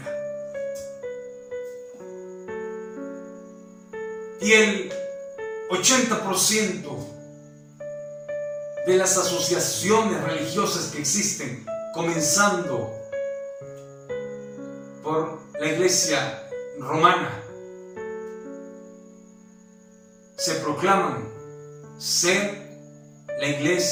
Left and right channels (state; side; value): identical; both; correlation 1.00